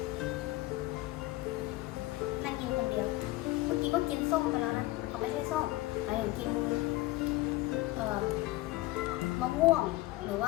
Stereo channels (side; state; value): right; quieter; 18.9 dB